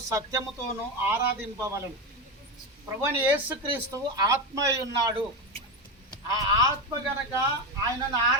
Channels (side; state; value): both; normal; correlation 0.15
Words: సత్యముతోనూ ఆరాధింపవలెను. ప్రభుని యేసుక్రీస్తు ఆత్మ అయి ఉన్నాడు. ఆ ఆత్మ గనక ఆయనను